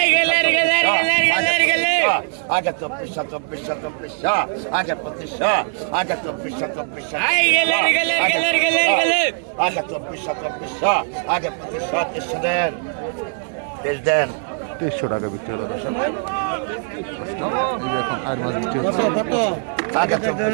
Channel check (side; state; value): left; silent; digital silence